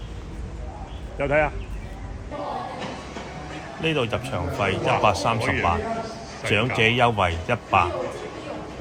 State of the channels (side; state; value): both; identical; correlation 1.00